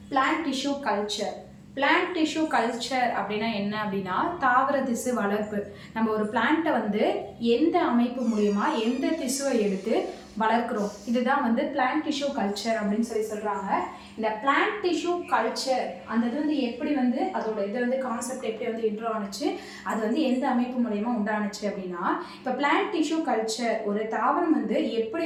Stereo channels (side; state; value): both; identical; correlation 1.00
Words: plant tissue culture. Plant tissue culture அப்படின்னா என்ன அப்படின்னா தாவர திசு வளர்ப்பு. நம்ம ஒரு பிளான்ட்டை எந்த அமைப்பு மூலியமா எந்த திசுவை எடுத்து வளர்க்குறோம், இதுதான் பிளான்ட் டிஷ்யூ கல்ச்சர் அப்படின்னு சொல்றாங்க. இந்த பிளான்ட் டிஷ்யூ கல்ச்சர் அந்த இது எப்படி அதோட இது கான்செப்ட் எப்படி இன்ட்ரோ ஆனிச்சு, அது எந்த அமைப்பு மூலயமா உண்டானுச்சு அப்படின்னா, இப்போ பிளான்ட் டிஷ்யூ கல்ச்சர் ஒரு தாவரம்